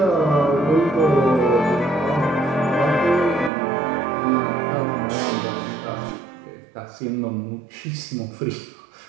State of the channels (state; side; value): drops out; left; at 3.5 s